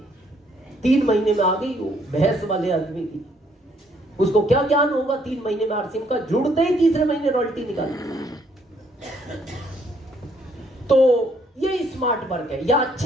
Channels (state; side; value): normal; both; correlation 0.68